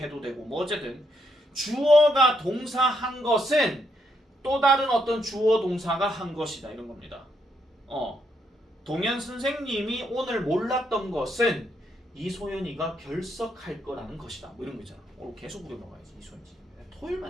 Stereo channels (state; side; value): normal; both; correlation 0.76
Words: 되고 뭐 어쨌든 주어가 동사한 것은 또 다른 어떤 주어 동사가 한 것이다 이런 겁니다. 동현 선생님이 오늘 몰랐던 것은 이소연이가 결석할 거라는 것이다. 뭐 이런 거 있잖아. 오늘 계속 우려 먹어야지 이소연이.